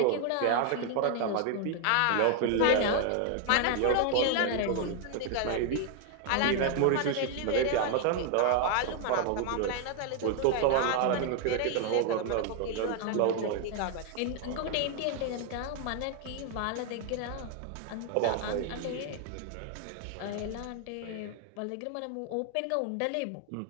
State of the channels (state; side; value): different; both; correlation 0.00